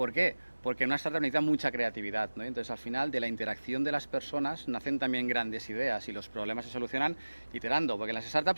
qué? Porque en una startup necesita mucha creatividad, ¿no? Entonces, al final, de la interacción de las personas nacen también grandes ideas y los problemas se solucionan iterando, porque en las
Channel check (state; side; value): inverted; both; correlation -1.00